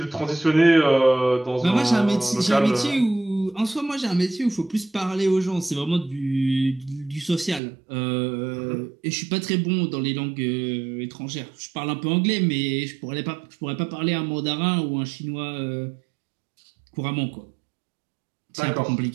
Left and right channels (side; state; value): left; drops out; at 7.6 s